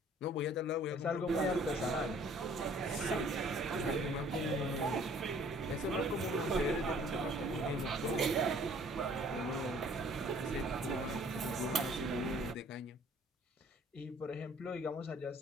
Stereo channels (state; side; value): normal; both; correlation 0.56